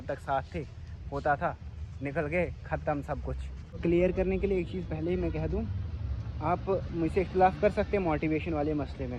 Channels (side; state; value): both; identical; correlation 1.00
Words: तक साथ थे होता था, निकल गए ख़त्म सब कुछ। क्लियर करने के लिए एक चीज़ पहले ही मैं कह दूँ, आप मुझसे इख्तिलाफ़ कर सकते हैं मोटिवेशन वाले मसले